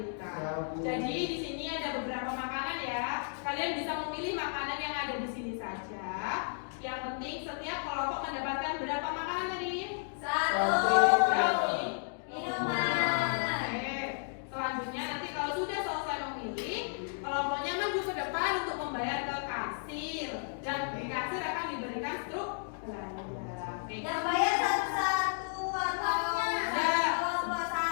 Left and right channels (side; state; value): right; silent; digital silence